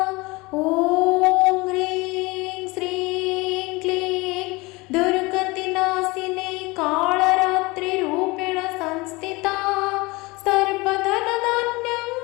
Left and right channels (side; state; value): right; quieter; 23.8 dB